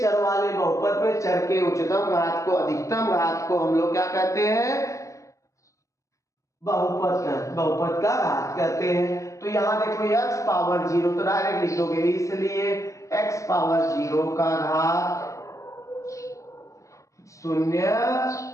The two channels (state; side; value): late; right; 0.15 ms